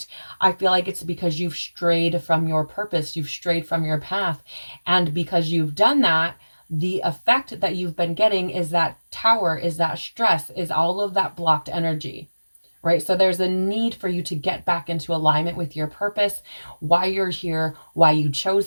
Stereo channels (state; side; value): inverted; both; correlation -1.00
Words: I feel like it's because you've strayed from your purpose, you've strayed from your path. And because you've done that, the effect that you've been getting is that tower, is that stress, is all of that blocked energy, right? So there's a need for you to get back into alignment with your purpose, why you're here, why you